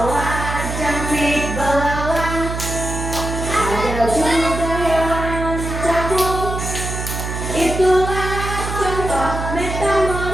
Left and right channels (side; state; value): right; noise; hum, 5 dB below the sound